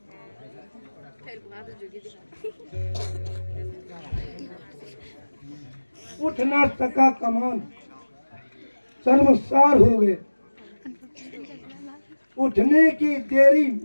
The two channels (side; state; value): both; inverted; correlation -1.00